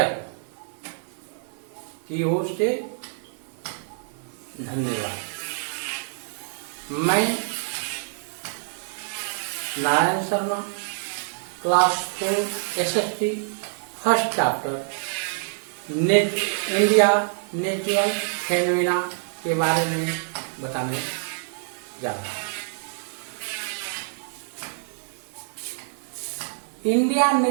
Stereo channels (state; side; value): silent; left; digital silence